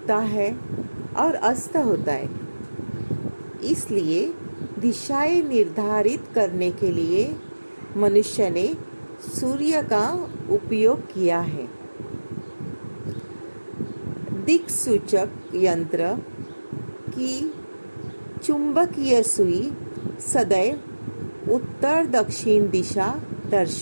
है और अस्त होता है, इसलिए दिशाएं निर्धारित करने के लिए मनुष्य ने सूर्य का उपयोग किया है। दिक्सूचक यंत्र की चुंबकीय सुई सदैव उत्तर दक्षिण दिशा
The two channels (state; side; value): inverted; both; correlation -1.00